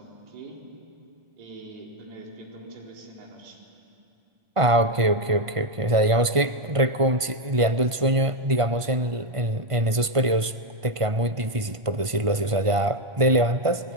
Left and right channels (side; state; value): left; late; 1.5 ms